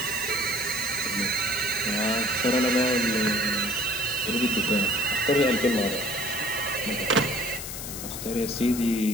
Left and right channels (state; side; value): noise; left; hiss, 8 dB below the sound